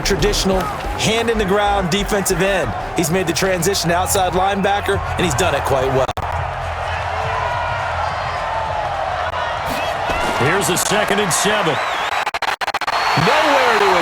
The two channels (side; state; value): both; identical; correlation 1.00